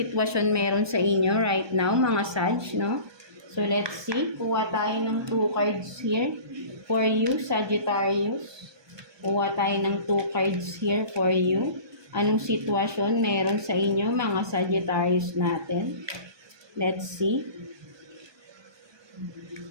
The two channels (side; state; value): left; late; 1.2 ms